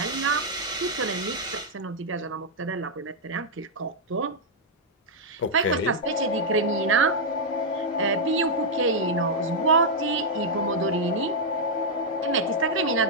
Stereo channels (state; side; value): normal; both; correlation -0.04